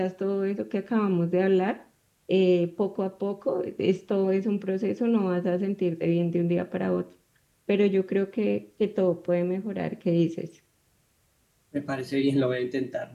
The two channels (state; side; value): identical; both; correlation 1.00